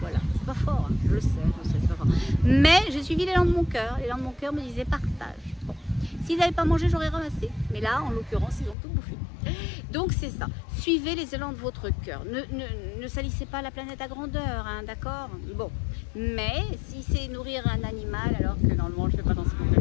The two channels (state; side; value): drops out; right; at 8.8 s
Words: voilà, c'est pas fort, hein. Je le sais, c'est pas fort. Mais j'ai suivi l'élan de mon cœur. L'élan de mon cœur me disait partage. Bon. S'ils n'avaient pas mangé, j'aurais ramassé. Mais là, en l'occurrence, ils ont tout bouffé. Donc c'est ça. Suivez les élans de votre cœur. Ne salissez pas la planète à grandeur, hein, d'accord? Bon. Mais si c'est nourrir un animal, alors que normalement je ne fais pas dans ce